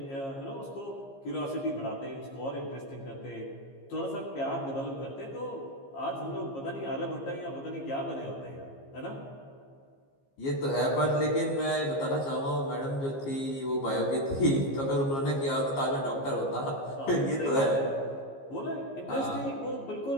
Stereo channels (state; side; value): late; right; 15 ms